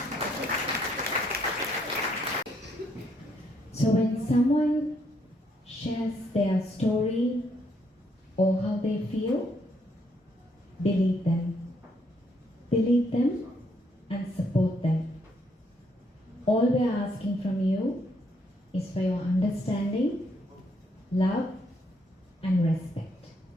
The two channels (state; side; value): normal; both; correlation 0.72